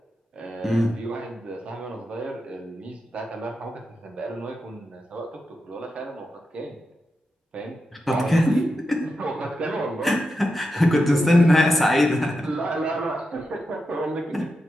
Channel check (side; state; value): both; normal; correlation 0.88